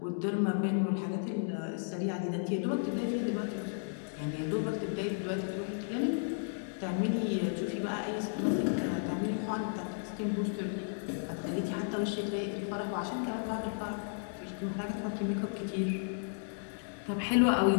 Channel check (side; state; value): right; silent; digital silence